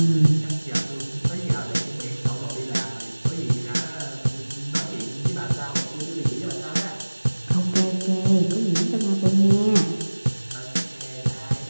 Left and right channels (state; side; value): inverted; both; correlation -1.00